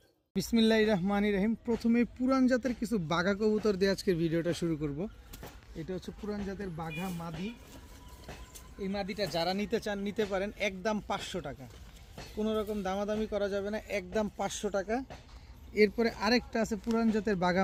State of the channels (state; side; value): identical; both; correlation 1.00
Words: বিসমিল্লাহির রহমানির রহিম। প্রথমে পুরান জাতের কিছু বাঘা কবুতর দিয়ে আজকের ভিডিওটা শুরু করব। এটা হচ্ছে পুরান জাতের বাঘা মাদি। এই মাদিটা যারা নিতে চান নিতে পারেন, একদম 500 টাকা। কোনো রকম দামাদামি করা যাবে না, একদম 500 টাকা। এরপরে আরেকটা আছে পুরান জাতের বাঘা